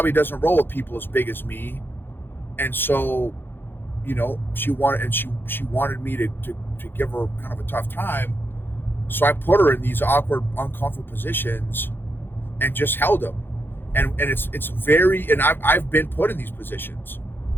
doesn't roll with people as big as me. And so, she wanted me to give her kind of a tough time. So I put her in these awkward, uncomfortable positions and just held them. And it's very, and I've been put in these positions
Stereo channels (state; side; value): late; right; 0.10 ms